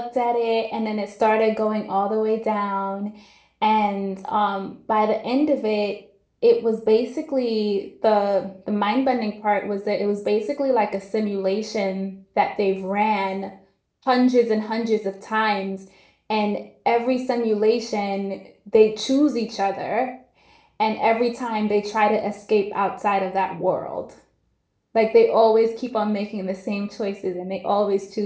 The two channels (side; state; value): both; identical; correlation 1.00